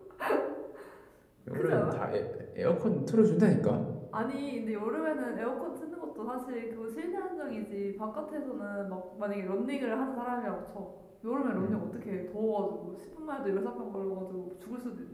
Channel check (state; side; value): identical; both; correlation 1.00